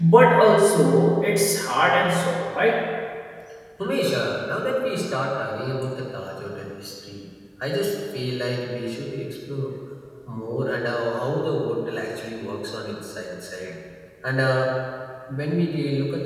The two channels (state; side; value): identical; both; correlation 1.00